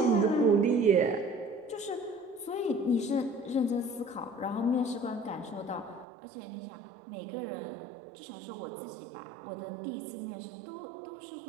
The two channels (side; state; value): left; drops out; at 6.1 s